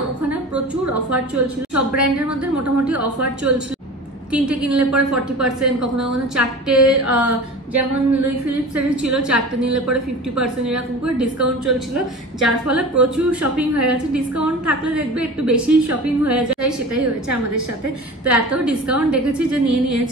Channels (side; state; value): both; normal; correlation 0.36